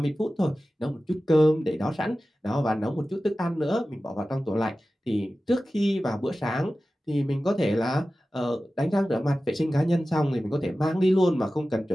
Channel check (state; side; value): normal; both; correlation 0.95